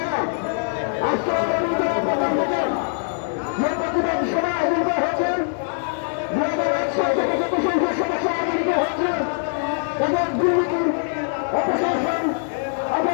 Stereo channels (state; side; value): silent; right; digital silence